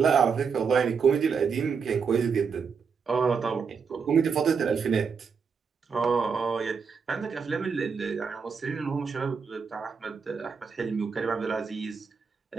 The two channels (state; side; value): quieter; left; 5.8 dB